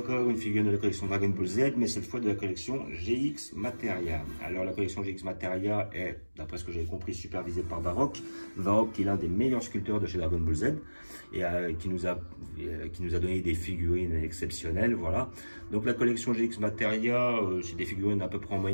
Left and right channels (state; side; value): inverted; both; correlation -1.00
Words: une figurine de la collection Dragon Ball Z, mais cette fois de la collection GX Materia. Alors la collection GX Materia est, d'après ce que j'ai compris, supervisée par Varrock. Varrock qui est l'un des meilleurs sculpteurs de chez Dragon Ball Z et qui nous a donné des figurines exceptionnelles, voilà. Donc la collection GX Materia, c'est des figurines à peu près en